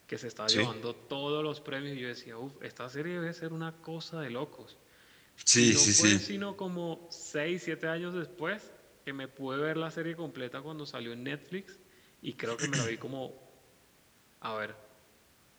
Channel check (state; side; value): identical; both; correlation 1.00